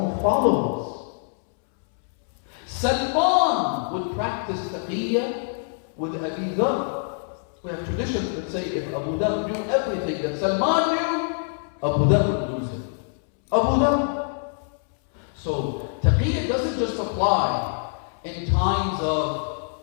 followers. Salman would practice taqiyya with Abi Dhar, We have traditions that say if Abu Dhar knew everything that Salman knew, Abu Dhar would lose him. Abu Dhar. So, taqiyya doesn't just apply in times of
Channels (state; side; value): silent; right; 62 dB below the other